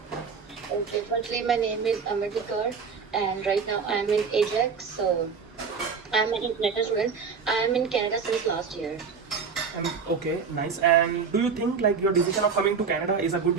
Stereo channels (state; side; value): quieter; left; 5.7 dB